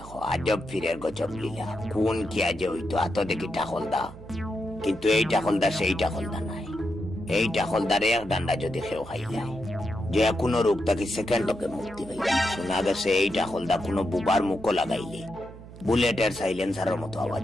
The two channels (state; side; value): noise; right; hum, 16 dB below the sound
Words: আজব ফিরের গজব লীলা, কোন কি আজে হইতো এত দেখি টাকলদা, কিন্তু এই টাকলদা সেই টাকলদা নাই। এই টাকলদারে এক ডান্ডা যদি খেও খাই যায়, যে কোনো রোগ তাকে সেকেন্ডকে মুক্তি পাই। শোনা গেছে এই টাকলদা কোনো বুবার মুখ লাগাইলে বুলেটের সাইলেন্সারের মতো